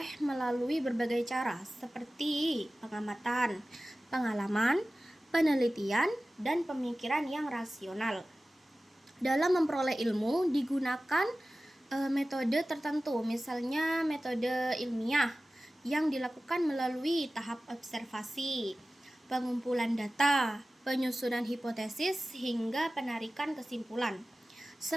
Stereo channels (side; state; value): both; normal; correlation 0.96